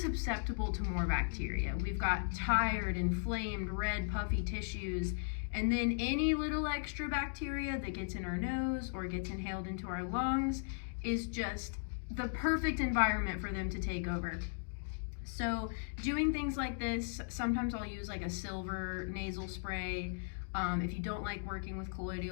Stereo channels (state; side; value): silent; right; digital silence